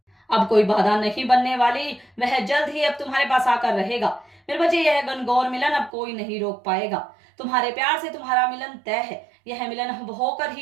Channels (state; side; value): drops out; left; at 5.9 s